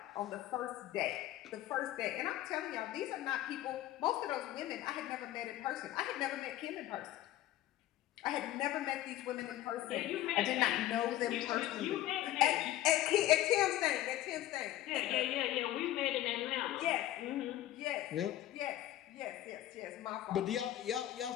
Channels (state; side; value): quieter; right; 14.0 dB